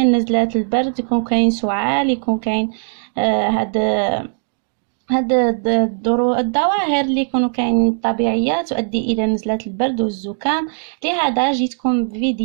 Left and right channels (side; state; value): left; silent; digital silence